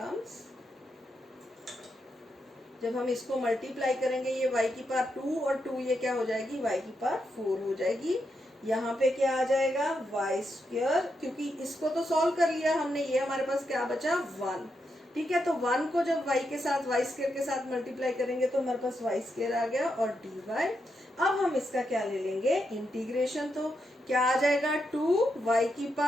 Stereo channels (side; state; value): both; normal; correlation 0.83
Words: जब हम इसको मल्टीप्लाई करेंगे ये y की पावर 2 और 2 ये क्या हो जाएगी, y की पावर 4 हो जाएगी। यहाँ पे क्या आ जाएगा, y², क्योंकि इसको तो सॉल्व कर लिया हमने, ये हमारे पास क्या बचा, 1। ठीक है, तो 1 को जब y के साथ y² के साथ मल्टीप्लाई करेंगे तो हमारे पास y² आ गया और dy। अब हम इसका क्या ले लेंगे, इंटीग्रेशन, तो क्या आ जाएगा, 2y की